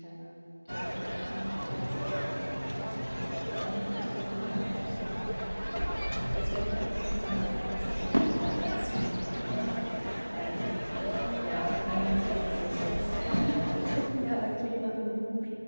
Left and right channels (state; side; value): inverted; both; correlation -1.00